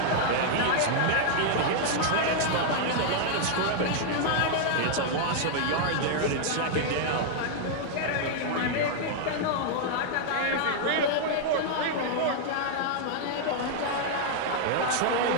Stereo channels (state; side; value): different; both; correlation -0.01